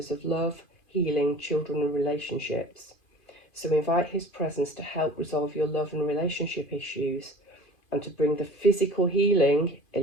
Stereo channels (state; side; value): late; right; 2.5 ms